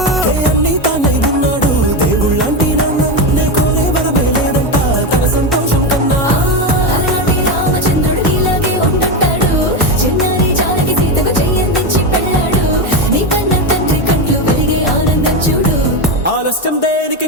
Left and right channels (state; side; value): normal; both; correlation 0.13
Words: అన్ని తానై ఉన్నాడు దేవుళ్ళంటి నన్ను కోరే వరపై లేడంట తన సంతోషం కన్నా రామచంద్రుడు ఇలాగే ఉంటాడు చిన్నారి జానకి సీతకు చెయ్యందించి పెళ్ళాడు నీ కన్న తండ్రి కంట్లు వెలిగి ఆనందం చూడు ఆలస్యం దేనికి